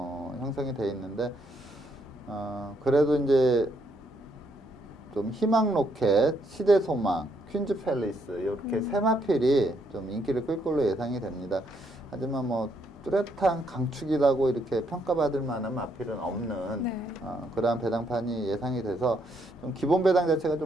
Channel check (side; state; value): both; normal; correlation 0.74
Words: 형성이 되어 있는데 그래도 이제 좀 희망 로켓, 시대 소망, 퀸즈 팰리스 이렇게 세 마필이 좀 인기를 끌 걸로 예상이 됩니다. 하지만 뭐 뚜렷한 강축이라고 이렇게 평가받을 만한 마필은 없는 네. 그러한 배당판이 예상이 돼서 좀 기본 배당 자체가